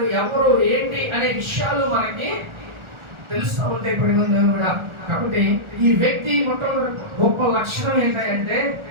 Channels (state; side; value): late; left; 1.4 ms